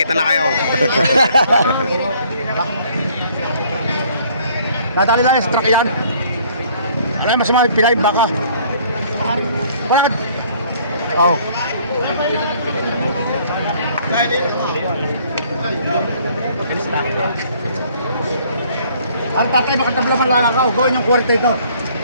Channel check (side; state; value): both; inverted; correlation -0.59